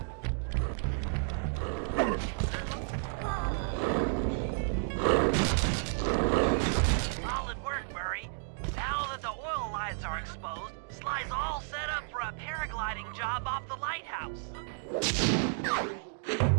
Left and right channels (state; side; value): silent; left; digital silence